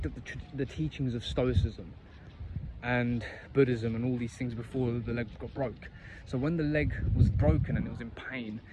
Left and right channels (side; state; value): both; identical; correlation 1.00